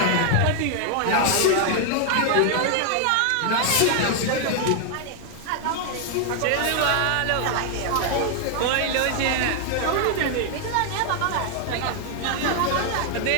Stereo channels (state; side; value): different; both; correlation 0.00